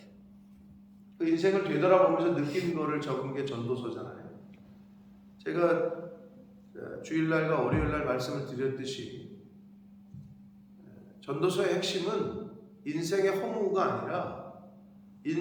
그 인생을 되돌아보면서 느낀 거를 적은 게 전도서잖아요. 제가 주일날과 월요일날 말씀을 드렸듯이 전도서의 핵심은 인생의 허무가 아니라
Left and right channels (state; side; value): identical; both; correlation 1.00